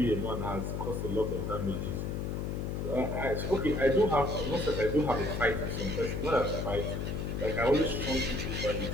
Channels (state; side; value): noise; left; hum, 2 dB below the sound